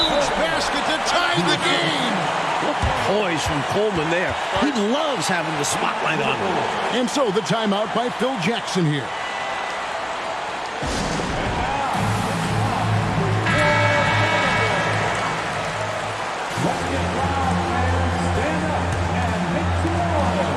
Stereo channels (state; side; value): identical; both; correlation 1.00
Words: basket to tie the game. What poise from Coleman there. He loves having the spotlight on him. And so the timeout by Phil Jackson here.